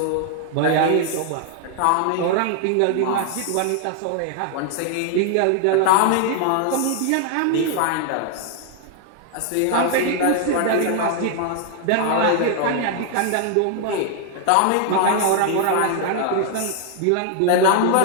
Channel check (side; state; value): both; different; correlation 0.00